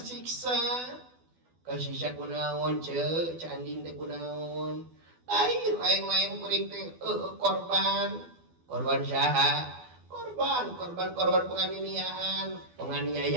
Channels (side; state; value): left; late; 12 ms